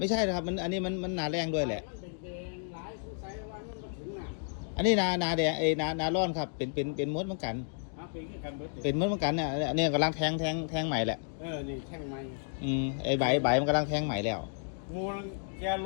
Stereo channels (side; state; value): right; silent; digital silence